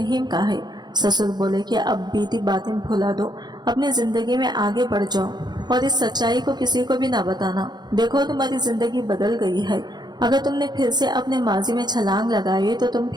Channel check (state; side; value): late; left; 0.21 ms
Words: का है। ससुर बोले कि अब बीती बातें भुला दो, अपनी जिंदगी में आगे बढ़ जाओ और इस सच्चाई को किसी को भी ना बताना। देखो, तुम्हारी जिंदगी बदल गई है। अगर तुमने फिर से अपने माजी में छलांग लगाई तो तुम